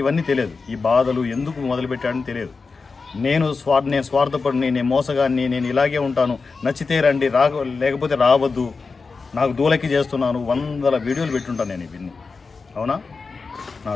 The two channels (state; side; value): quieter; right; 4.5 dB